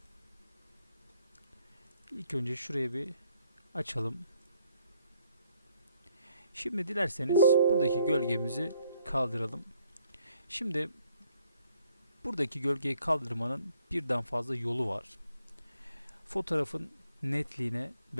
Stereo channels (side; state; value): both; inverted; correlation -0.68